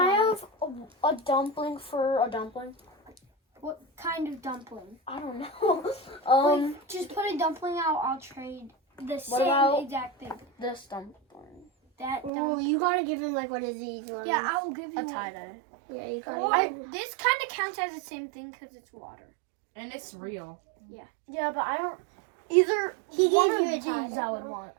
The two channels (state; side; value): drops out; left; at 12.3 s